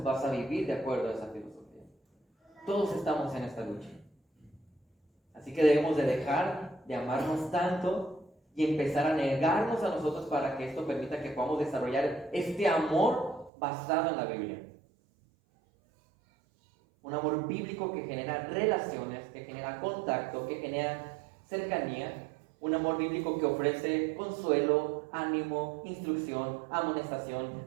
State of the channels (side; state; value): left; drops out; at 13.5 s